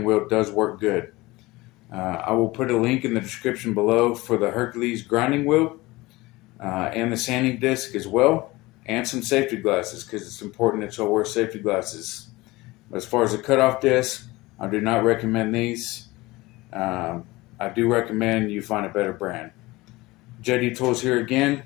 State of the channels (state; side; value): quieter; right; 20.8 dB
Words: wheel does work good. I will put a link in the description below for the Hercules grinding wheel and the sanding disc as well, and some safety glasses, because it's important that you'll wear safety glasses. As far as the cutoff disc, I do not recommend these. I do recommend you find a better brand. JD Tools here again.